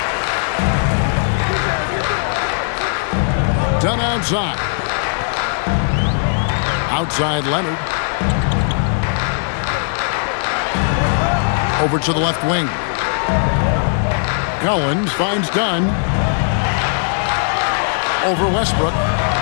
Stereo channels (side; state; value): right; silent; digital silence